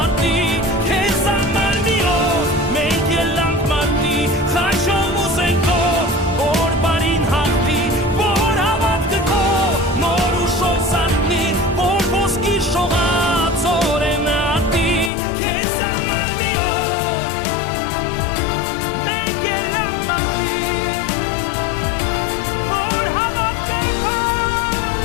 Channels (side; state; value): right; drops out; at 15.1 s